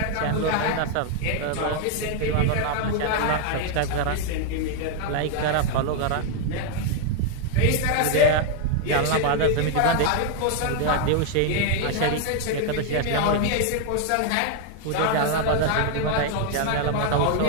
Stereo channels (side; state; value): both; different; correlation 0.00